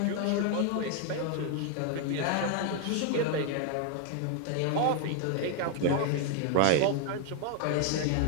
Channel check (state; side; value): different; both; correlation 0.00